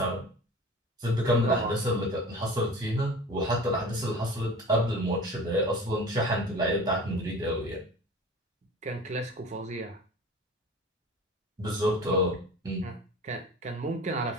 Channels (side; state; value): both; normal; correlation 0.39